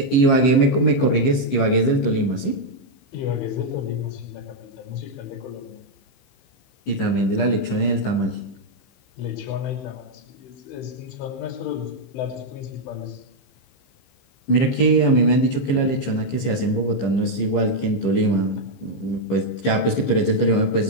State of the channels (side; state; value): right; late; 15 ms